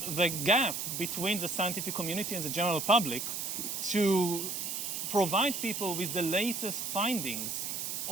the gap between the scientific community and the general public, to provide people with the latest findings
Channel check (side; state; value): right; noise; hiss, 3 dB below the sound